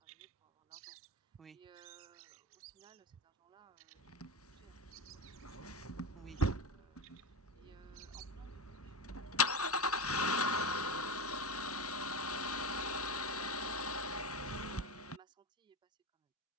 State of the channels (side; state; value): both; normal; correlation 0.19